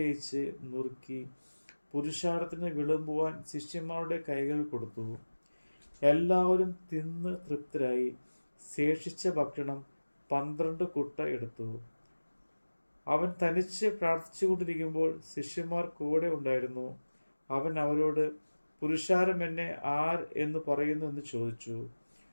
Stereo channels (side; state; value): both; inverted; correlation -1.00